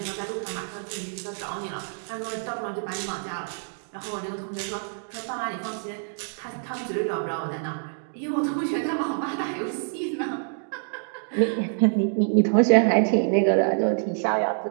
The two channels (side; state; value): left; silent; digital silence